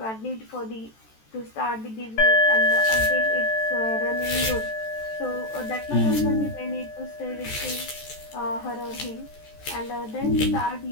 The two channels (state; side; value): late; right; 14 ms